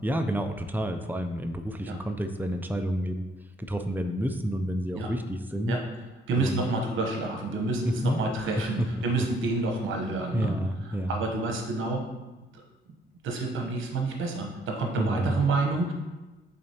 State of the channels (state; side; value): normal; both; correlation 0.66